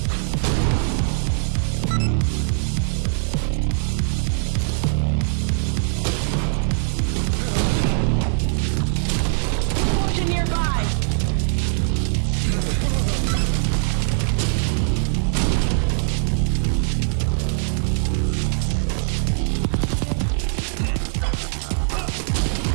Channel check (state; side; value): silent; left; digital silence